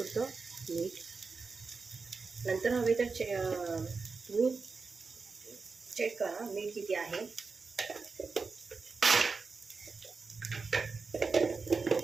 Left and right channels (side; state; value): left; quieter; 4.5 dB